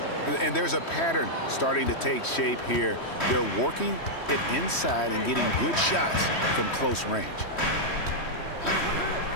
And there's a pattern starting to take shape here. They're working it inside and getting good shots from close range.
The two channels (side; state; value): right; late; 3.1 ms